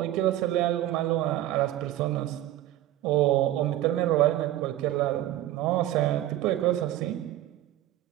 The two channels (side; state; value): left; quieter; 14.0 dB